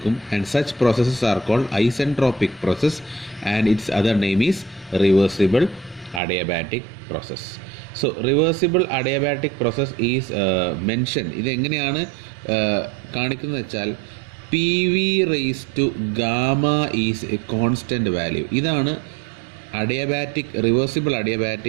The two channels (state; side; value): drops out; left; at 6.2 s